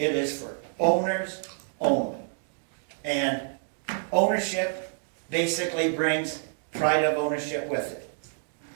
is for owners only. And ownership basically brings pride of ownership with it.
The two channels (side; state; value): left; silent; 59 dB below the other